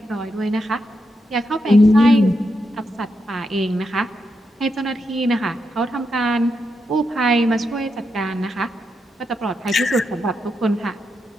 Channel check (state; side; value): normal; both; correlation 0.84